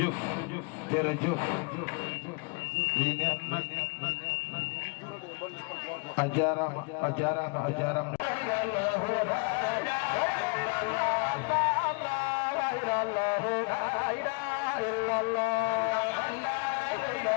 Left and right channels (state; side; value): quieter; right; 34.4 dB